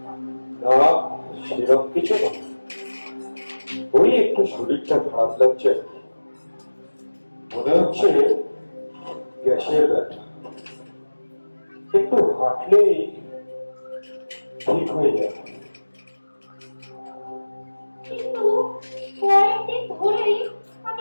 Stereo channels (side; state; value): both; inverted; correlation -1.00